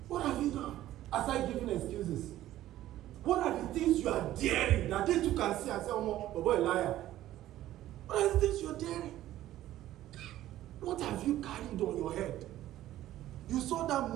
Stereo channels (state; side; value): quieter; left; 13.9 dB